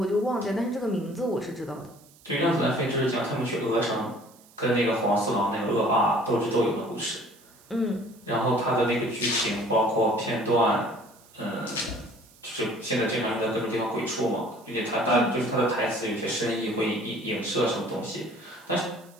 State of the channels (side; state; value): right; noise; hiss, 27 dB below the sound